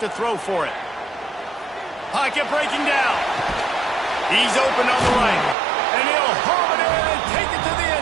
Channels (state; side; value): drops out; left; at 5.6 s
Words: to throw for it. Pocket breaking down. He's open on the right. And he'll home it in and take it to the